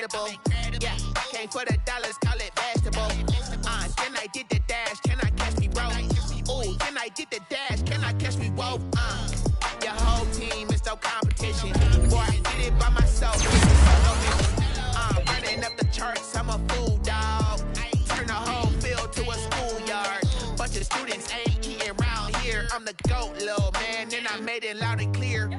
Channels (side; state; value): both; identical; correlation 1.00